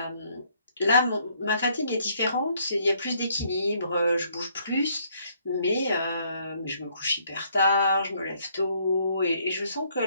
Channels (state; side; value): inverted; both; correlation -0.67